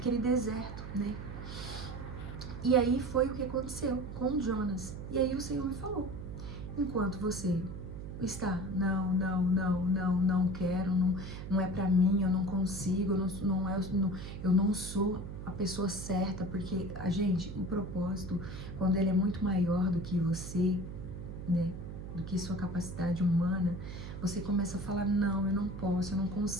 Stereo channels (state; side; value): noise; right; hum, 9 dB below the sound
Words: deserto, né? E aí foi o que aconteceu com Jonas. E aí o Senhor me falou, enquanto você está, não quero, não é pra mim, eu não consigo, eu não sou a pessoa certa, porque o propósito, quando ele é muito maior do que você, né, do que sua capacidade humana, você começa a falar, não, eu não posso, eu não